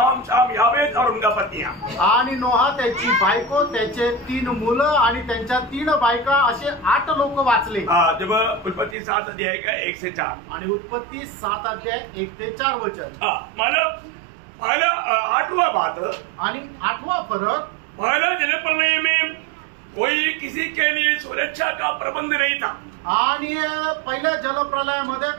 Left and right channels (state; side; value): drops out; left; at 9.0 s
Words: शाम यावेत और उनका पत्नियां. आणि नोहा, त्याची बायको, त्याचे 3 मुलं आणि त्यांच्या 3 बायका असे 8 लोक वाचले. जब उत्पत्ति 7 अध्याय का 1 से 4. आणि उत्पत्ति 7 अध्याय 1 ते 4 वचन. मतलब पहला 8वां बात आणि 8वां फरक, पहला जलप्रलय में कोई किसी के लिए सुरक्षा का प्रबंध नहीं था. आणि पहिल्या जलप्रलयामध्ये